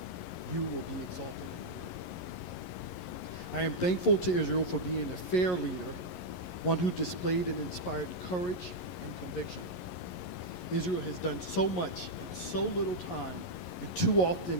you will be exalted in the earth." I am thankful to Israel for being a fair leader, one who displayed and inspired courage and conviction. Israel has done so much in so little time, and too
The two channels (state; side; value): late; right; 11 ms